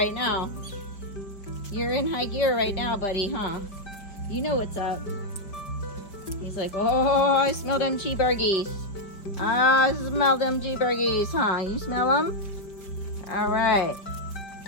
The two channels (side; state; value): right; late; 5.1 ms